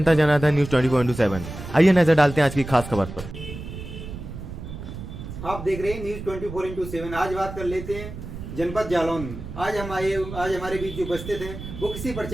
जनार्दन न्यूज 24/7। आइए नजर डालते हैं आज की खास खबर पर। आप देख रहे हैं न्यूज 24/7। आज बात कर लेते हैं जनपद जालौन में। आज हमारे बीच जो उपस्थित हैं वो किसी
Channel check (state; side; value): noise; right; rumble, 10 dB below the sound